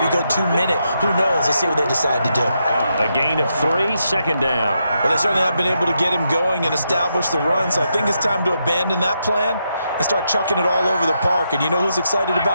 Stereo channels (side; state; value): both; inverted; correlation -0.82